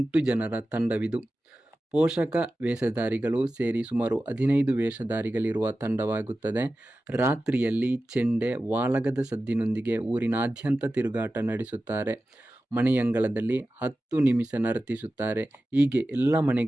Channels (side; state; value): both; normal; correlation 0.94